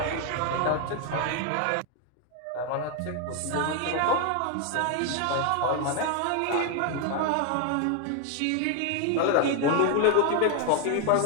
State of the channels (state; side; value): different; both; correlation 0.01